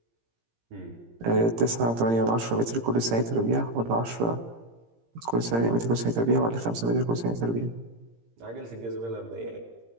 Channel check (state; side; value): late; left; 17 ms